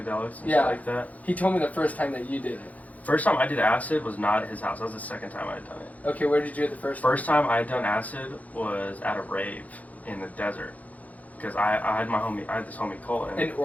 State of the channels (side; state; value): right; late; 0.074 ms